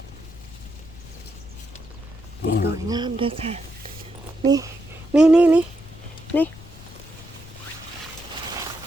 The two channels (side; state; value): left; noise; rumble, 18 dB below the sound